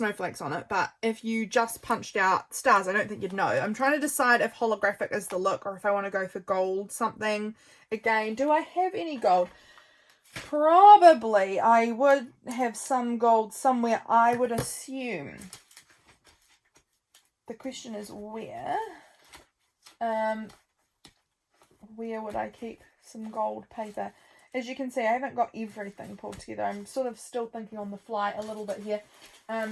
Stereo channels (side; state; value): both; identical; correlation 1.00